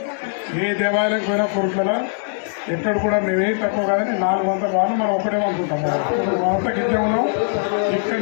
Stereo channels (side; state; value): right; silent; digital silence